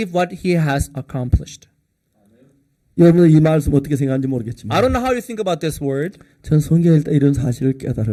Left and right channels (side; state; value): both; identical; correlation 1.00